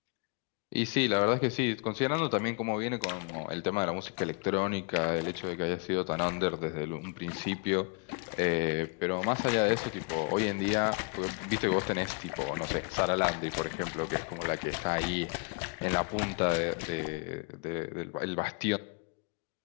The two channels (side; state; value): right; quieter; 35.1 dB